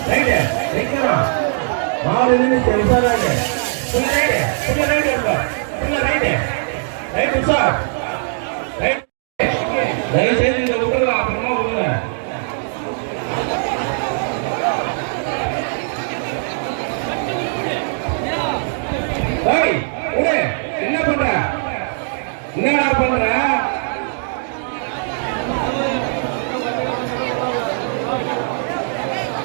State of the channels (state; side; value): silent; left; 66 dB below the other